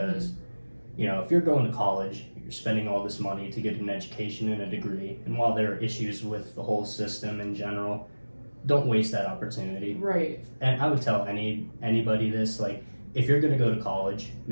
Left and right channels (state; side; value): inverted; both; correlation -1.00